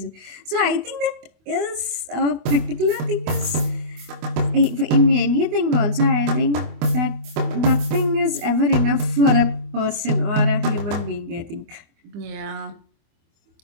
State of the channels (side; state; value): left; late; 25 ms